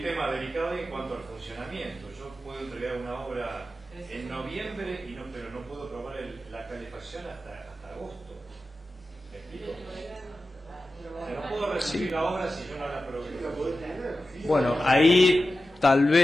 tema delicado en cuanto al funcionamiento. Yo puedo entregar una obra en noviembre, pero no puedo probar la calefacción hasta agosto. ¿Me explico? No puedo recibir la obra si yo no la probé. Bueno, ahí tal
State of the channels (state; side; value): normal; both; correlation 0.93